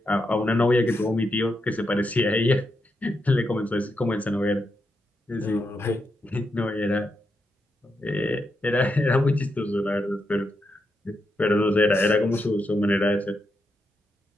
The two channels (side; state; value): both; normal; correlation 0.84